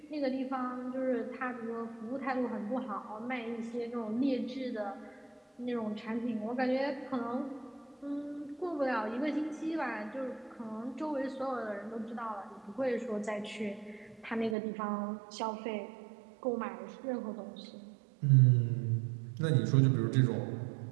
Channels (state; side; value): drops out; left; at 14.6 s